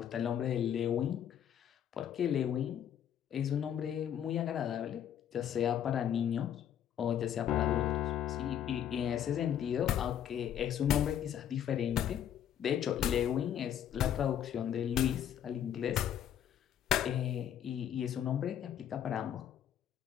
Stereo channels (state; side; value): quieter; right; 9.8 dB